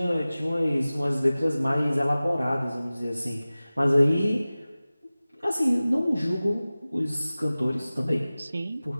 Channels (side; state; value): both; inverted; correlation -0.97